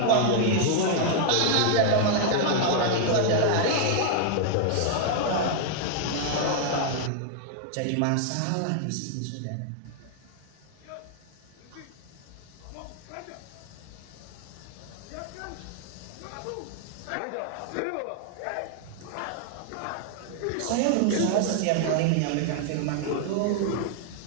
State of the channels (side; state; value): both; different; correlation 0.00